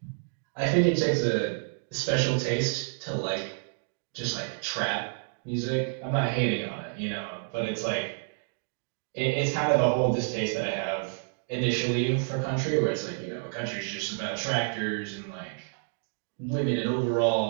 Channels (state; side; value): silent; left; digital silence